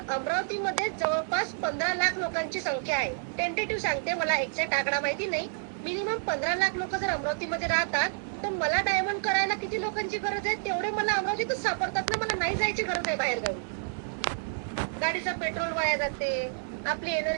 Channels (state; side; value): silent; left; digital silence